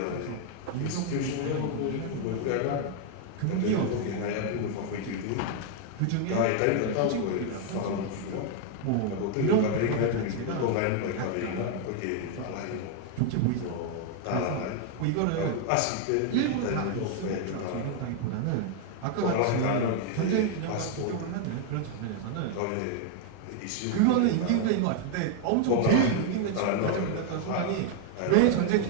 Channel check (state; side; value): different; both; correlation 0.00